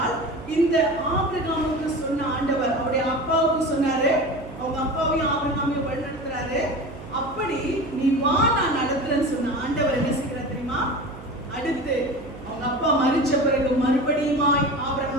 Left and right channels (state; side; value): noise; right; hum, 15 dB below the sound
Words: இந்த ஆபிரகாமுக்கு சொன்ன ஆண்டவர் அவருடைய அப்பாவுக்கு சொன்னாரு, அவங்க அப்பாவையும் ஆபிரகாமையும் வழிநடத்துறாரு. அப்படி நீ வா, நான் நடத்துறேன்னு சொன்ன ஆண்டவர் என்ன செய்கிறார் தெரியுமா? அடுத்து அவங்க அப்பா மரிச்ச பிறகு மறுபடியுமாய்